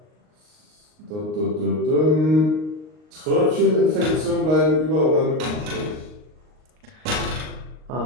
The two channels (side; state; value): left; late; 39 ms